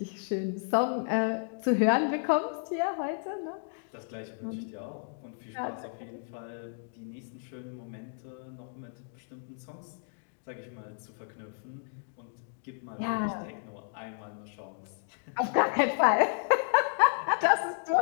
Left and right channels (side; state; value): right; silent; digital silence